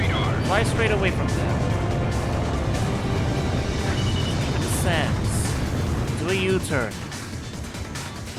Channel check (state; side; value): identical; both; correlation 1.00